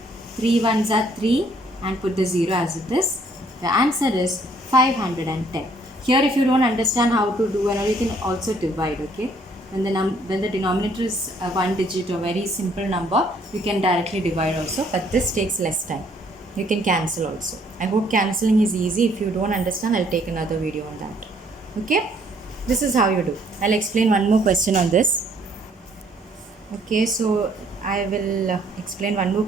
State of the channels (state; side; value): normal; both; correlation 0.64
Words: 3 1s are 3, and put the 0 as it is. The answer is 510. Here if you don't understand how to do, you can also divide, okay. When the denominator is a one digit or very simple number, you can directly divide also, but this takes less time. You can cancel also. I hope cancelling is easy. If you don't understand, I'll take another video on that. Okay, this is how you do. I'll explain one more question on this. Okay, so I will explain one more